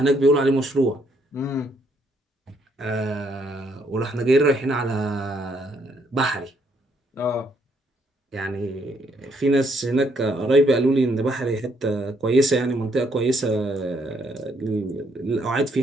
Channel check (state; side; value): normal; both; correlation 0.71